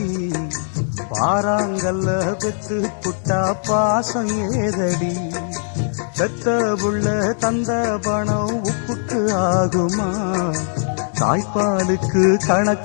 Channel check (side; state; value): right; silent; digital silence